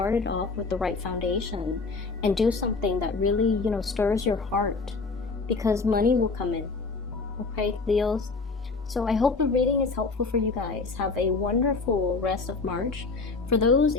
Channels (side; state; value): right; quieter; 4.1 dB